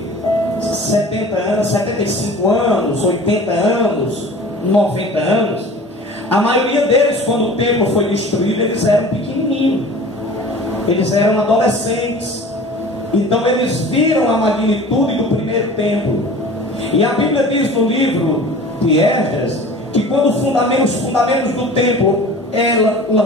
70 anos, 75 anos, 80 anos, 90 anos. A maioria deles, quando o templo foi destruído, eles eram pequenininhos, eles eram adolescentes. Então eles viram a magnitude do primeiro templo. E a Bíblia diz no livro de Esdras que quando os fundamentos do templo é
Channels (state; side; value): normal; both; correlation 0.42